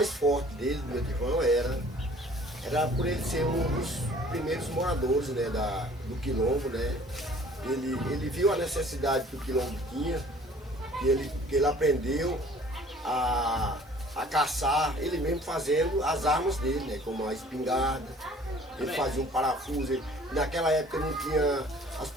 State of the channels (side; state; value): both; normal; correlation 0.52